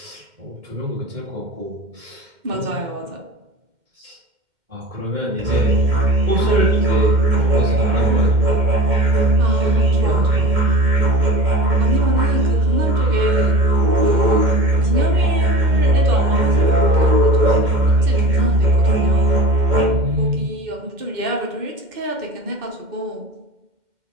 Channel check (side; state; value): left; late; 2.1 ms